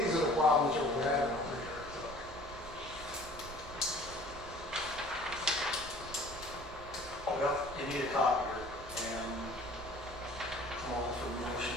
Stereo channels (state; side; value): normal; both; correlation 0.49